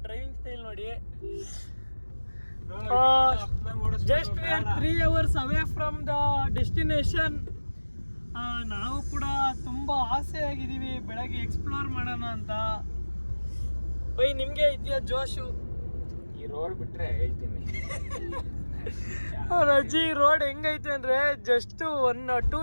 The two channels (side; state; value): both; inverted; correlation -1.00